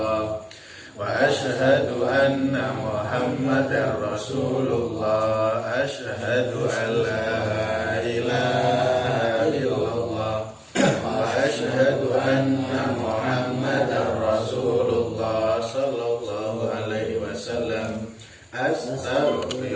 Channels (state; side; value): identical; both; correlation 1.00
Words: wa asyhadu anna muhammadar rasulullah. Asyhadu an la ilaha illallah wa asyhadu anna muhammadar rasulullah sallallahu alaihi wasallam.